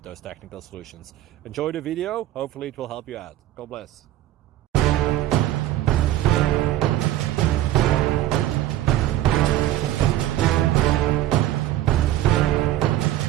those technical solutions. Enjoy the video, hopefully it will help you out. God bless.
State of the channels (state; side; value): quieter; left; 13.8 dB